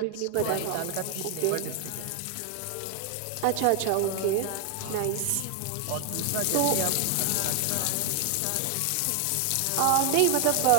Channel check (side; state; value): both; different; correlation 0.00